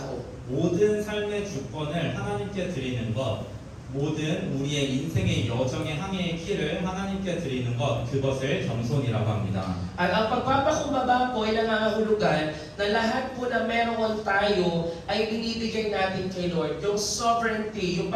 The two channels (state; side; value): identical; both; correlation 1.00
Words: 모든 삶의 주권을 하나님께 드리는 것, 모든 우리의 인생의 여정의 항해의 키를 하나님께 드리는 것, 그것을 겸손이라고 합니다. At ang pagpapakumbaba po ay nangangahulugan na lahat po na meron tayo ay binibigay natin kay Lord. Yung sovereignty, yung